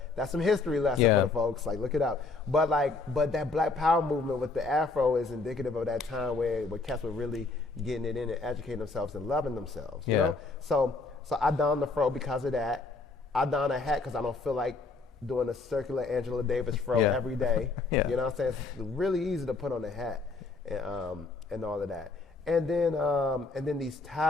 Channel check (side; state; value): right; quieter; 3.8 dB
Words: That's some history lesson for the folks. Like, look it up. But that Black Power movement with the Afro is indicative of that time where cats were really getting it in and educating themselves and loving themselves. You know. So I donned the fro because of that. I donned a hat because I don't feel like doing a circular Angela Davis fro every day. You know what I'm saying? It's really easy to put on a hat and all of that. And then these